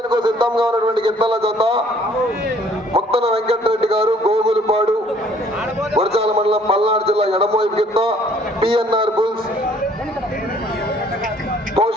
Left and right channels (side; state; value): both; normal; correlation 0.59